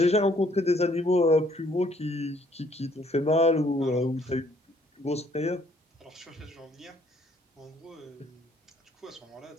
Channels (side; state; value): both; normal; correlation 0.64